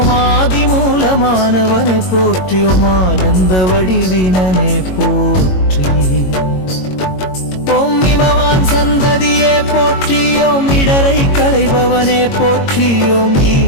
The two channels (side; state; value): right; late; 22 ms